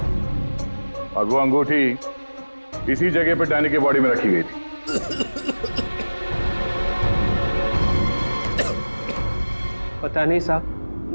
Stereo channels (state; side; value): inverted; both; correlation -1.00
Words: और वो अंगूठी इसी जगह पर डैनी के बॉडी में रखी गई थी। पता नहीं